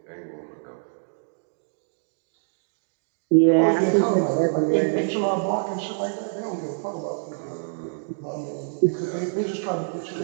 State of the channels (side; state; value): left; silent; digital silence